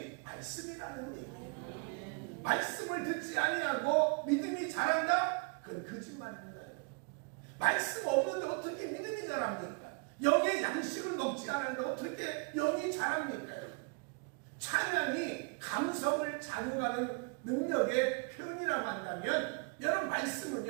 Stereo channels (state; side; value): quieter; left; 34.5 dB